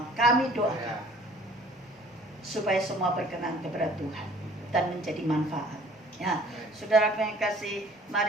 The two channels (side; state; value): both; normal; correlation 0.53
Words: kami doakan supaya semua berkenan kepada Tuhan dan menjadi manfaat. Ya, saudara yang kasih,